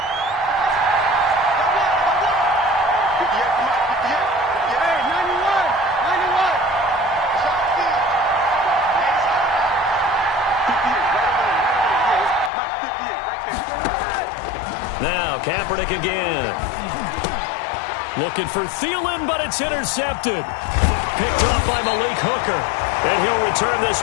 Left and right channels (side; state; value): right; drops out; at 12.5 s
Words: Now, Kaepernick again. Looking for Thielen, but it's intercepted. Picked off by Malik Hooker. And he'll return this